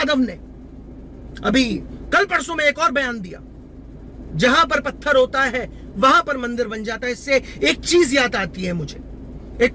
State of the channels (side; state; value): both; identical; correlation 1.00